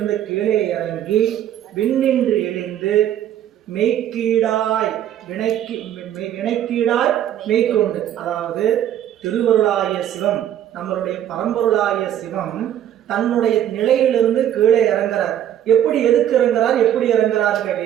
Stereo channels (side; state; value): left; quieter; 11.0 dB